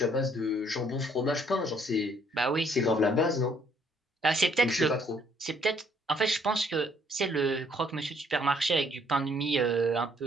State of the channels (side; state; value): both; normal; correlation 0.65